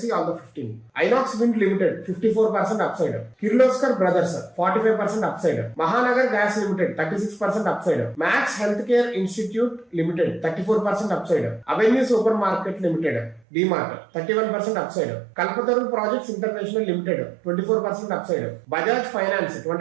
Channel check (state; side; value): drops out; left; at 13.5 s